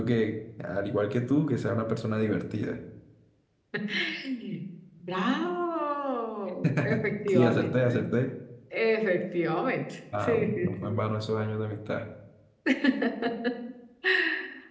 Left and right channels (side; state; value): both; identical; correlation 1.00